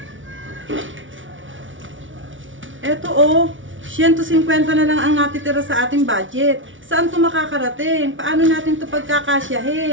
Eto 150 na lang ang natitira sa ating budget. Saan to makakarating? Paano natin to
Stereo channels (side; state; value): left; late; 0.56 ms